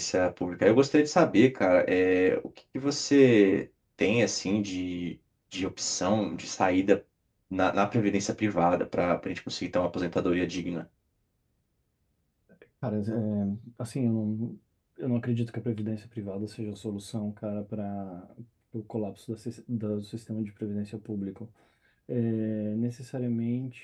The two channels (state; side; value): identical; both; correlation 1.00